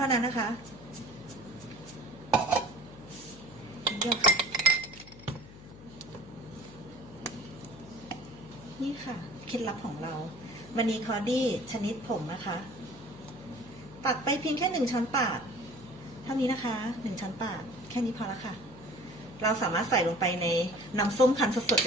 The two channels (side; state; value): left; noise; hum, 17 dB below the sound